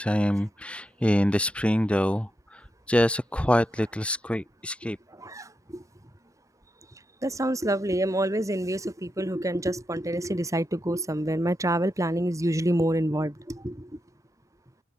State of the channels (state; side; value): normal; both; correlation 0.86